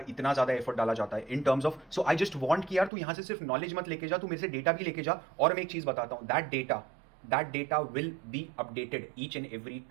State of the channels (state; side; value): drops out; left; at 2.9 s